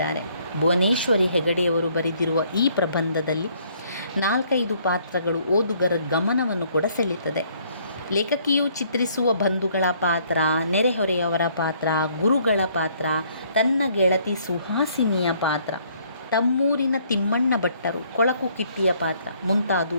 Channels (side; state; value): both; inverted; correlation -0.64